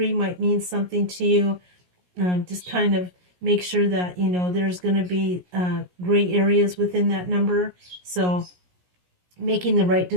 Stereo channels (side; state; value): left; late; 17 ms